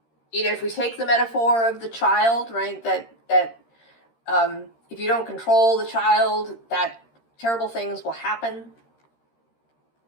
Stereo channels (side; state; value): right; late; 13 ms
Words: if we take the metaphor of the child, right, that if you don't control the child, that terrible things will happen.